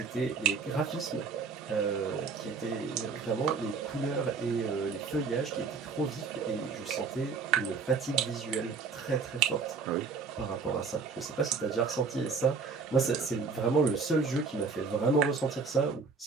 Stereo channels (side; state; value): left; quieter; 4.9 dB